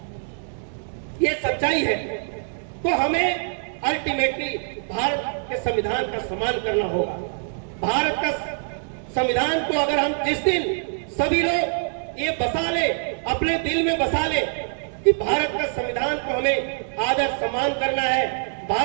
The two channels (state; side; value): silent; left; digital silence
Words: ये सच्चाई है। तो हमें अल्टीमेटली भारत के संविधान का सम्मान करना होगा। भारत का संविधान को अगर हम जिस दिन सभी लोग ये बसा ले, अपने दिल में बसा ले कि भारत का संविधान को हमें आदर सम्मान करना है,